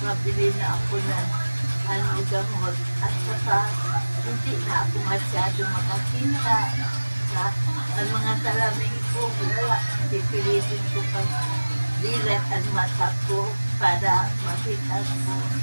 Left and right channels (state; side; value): inverted; both; correlation -1.00